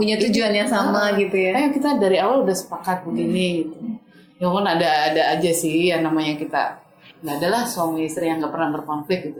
tujuan yang sama gitu ya. Ayo kita dari awal udah sepakat begini gitu. Ya kan ada aja sih yang namanya kita. Nggak adalah suami istri yang nggak pernah berkonflik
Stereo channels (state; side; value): identical; both; correlation 1.00